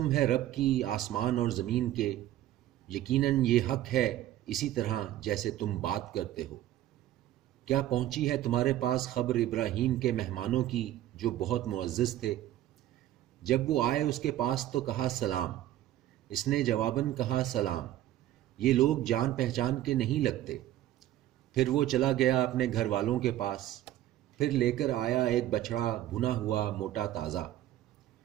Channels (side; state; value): left; quieter; 13.4 dB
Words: ہے رب کی آسمان اور زمین کے، یقیناً یہ حق ہے اسی طرح جیسے تم بات کرتے ہو۔ کیا پہنچی ہے تمہارے پاس خبر ابراہیم کے مہمانوں کی جو بہت معزز تھے؟ جب وہ آئے اس کے پاس تو کہا سلام، اس نے جواباً کہا سلام، یہ لوگ جان پہچان کے نہیں لگتے۔ پھر وہ چلا گیا اپنے گھر والوں کے پاس، پھر لے کر آیا ایک بچڑا بھنا ہوا موٹا تازہ،